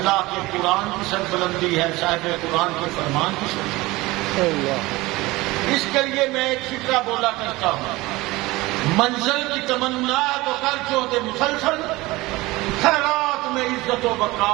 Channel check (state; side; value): quieter; left; 20.4 dB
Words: کے قرآن کی سربلندی ہے، صاحب قرآن کے فرمان کی سربلندی۔ اس کے لیے میں ایک فکرہ بولا کرتا ہوں، منزل کی تمنا تو کر جو دے مسلسل، خیرات میں عزت و